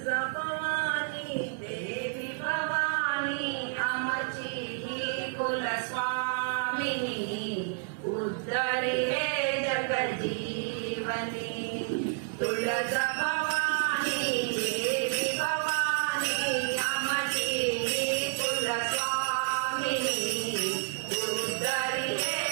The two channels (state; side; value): silent; left; digital silence